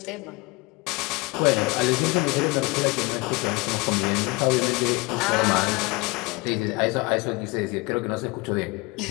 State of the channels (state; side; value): quieter; right; 25.5 dB